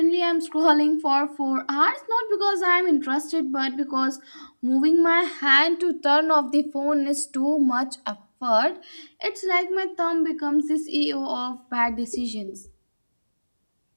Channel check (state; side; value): inverted; both; correlation -1.00